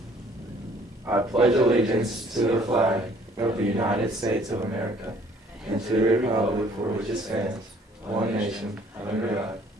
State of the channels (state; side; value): normal; both; correlation 0.58